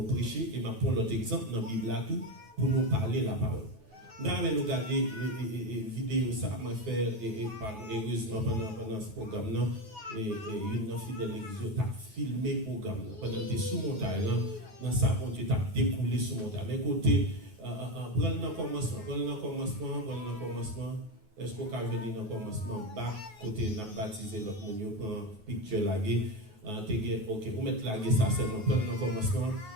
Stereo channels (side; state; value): left; late; 9.3 ms